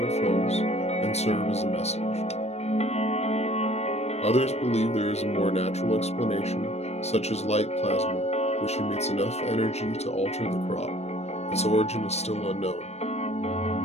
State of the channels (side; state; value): right; late; 0.31 ms